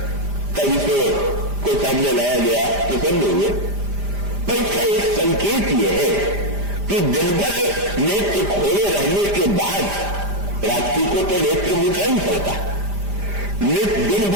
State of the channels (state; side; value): late; left; 5.0 ms